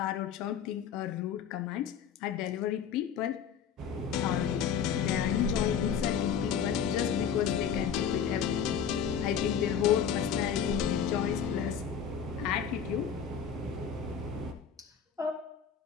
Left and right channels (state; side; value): quieter; right; 7.7 dB